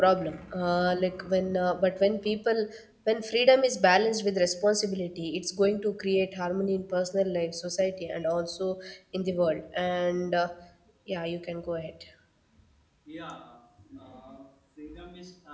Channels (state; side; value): identical; both; correlation 1.00